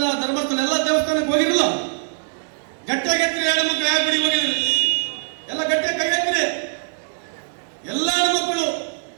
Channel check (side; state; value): left; silent; digital silence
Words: ಧರ್ಮಸ್ಥಳ ಎಲ್ಲ ದೇವಸ್ಥಾನಕ್ಕೆ ಹೋಗಿರಲಿಲ್ಲ. ಗಟ್ಟಿಯಾಗೆತ್ರಿ ಹೆಣ್ಮಕ್ಳು. ಯಾವ ಗುಡಿ ಹೋಗಿದ್ರಿ? ಎಲ್ಲ ಗಟ್ಟಿಯಾಗಿ ಕೈ ಎತ್ತಿರಿ. ಎಲ್ಲ ಹೆಣ್ಮಕ್ಳು